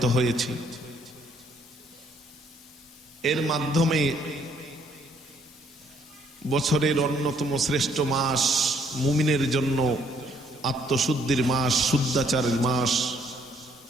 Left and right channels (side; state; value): both; normal; correlation 0.67